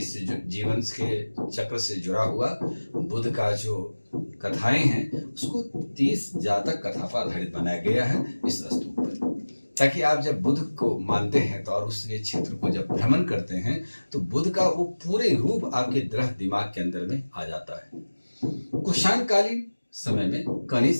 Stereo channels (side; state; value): both; inverted; correlation -1.00